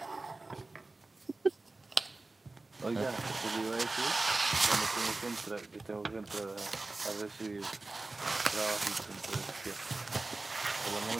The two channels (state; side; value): quieter; left; 3.2 dB